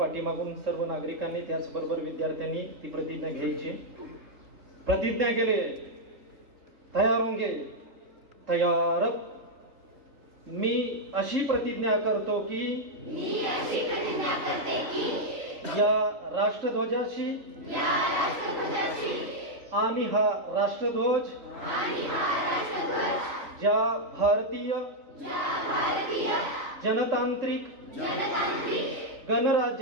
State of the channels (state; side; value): late; left; 3.9 ms